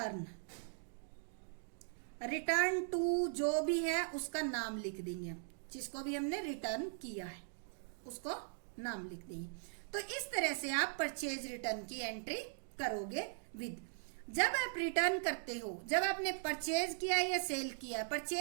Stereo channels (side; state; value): left; silent; digital silence